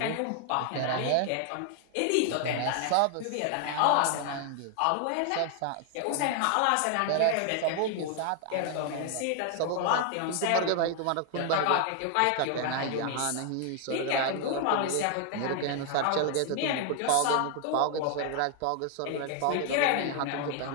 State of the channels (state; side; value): different; both; correlation 0.00